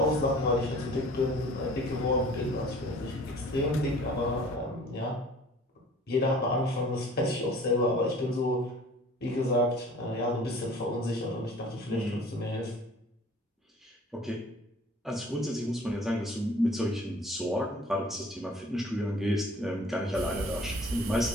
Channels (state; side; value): normal; both; correlation 0.49